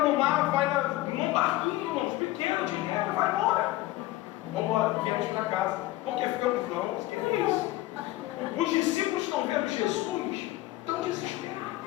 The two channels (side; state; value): right; quieter; 17.1 dB